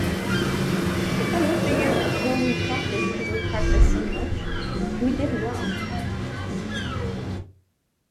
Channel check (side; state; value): both; identical; correlation 1.00